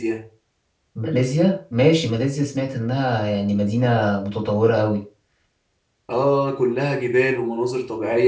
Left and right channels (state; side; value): identical; both; correlation 1.00